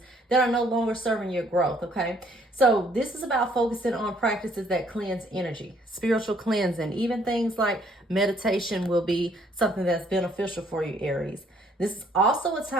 that are no longer serving your growth, okay? So this is about focusing on practices that cleanse energy, spiritual cleansing. Even things like meditation will be something that's beneficial for you, Aries. This is also a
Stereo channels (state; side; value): normal; both; correlation 0.64